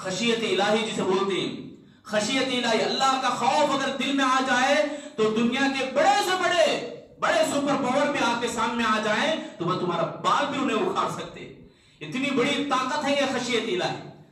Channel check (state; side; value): identical; both; correlation 1.00